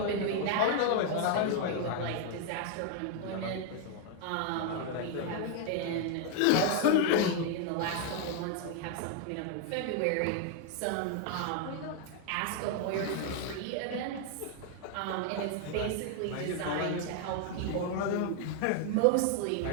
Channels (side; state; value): both; different; correlation 0.00